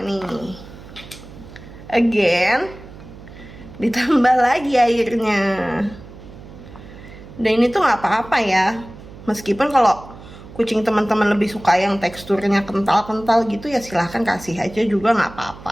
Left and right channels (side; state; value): right; noise; hum, 17 dB below the sound